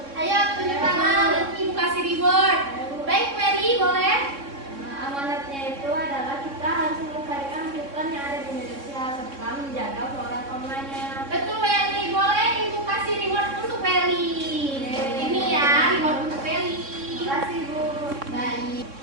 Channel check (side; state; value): left; late; 3.6 ms